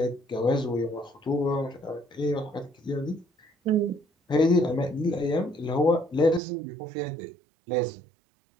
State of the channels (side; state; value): left; drops out; at 6.4 s